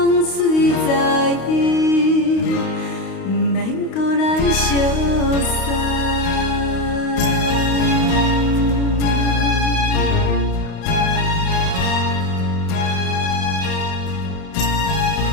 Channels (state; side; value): late; right; 32 ms